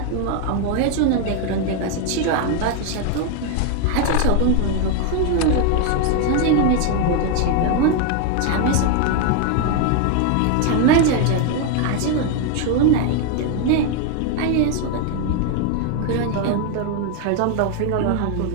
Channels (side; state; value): both; different; correlation 0.01